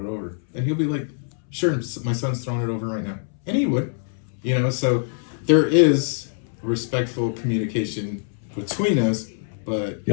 over?" And he'll be like, "Sure, my son's throwing it over right now," and he would, you know. So there is respectful communication between us, but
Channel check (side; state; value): right; silent; 63 dB below the other